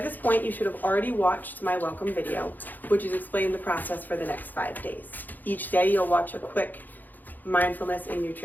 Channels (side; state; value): right; late; 0.085 ms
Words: this point, you should have already watched my welcome video, which is explaining the process for the next 5 days. Each day, you'll watch a quick mindfulness and